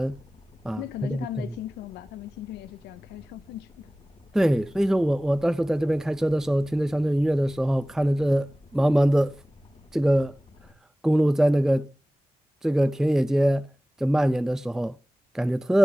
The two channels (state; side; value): normal; both; correlation 0.98